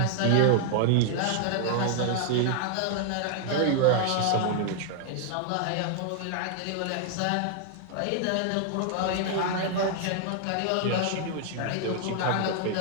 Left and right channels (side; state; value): both; different; correlation 0.00